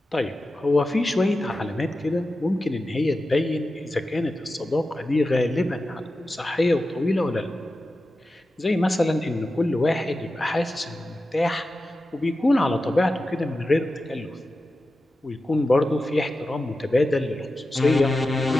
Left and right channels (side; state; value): both; normal; correlation 0.92